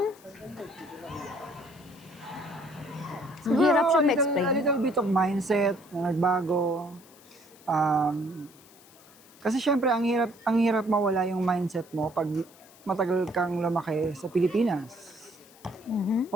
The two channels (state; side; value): noise; left; hiss, 25 dB below the sound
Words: Siguro, hirap siya a little, ma-explain. a little bit of mindset na nagbago. Kasi syempre, ang hirap mawala yung mindset mo pag matagal kang lumaki sa Pilipinas.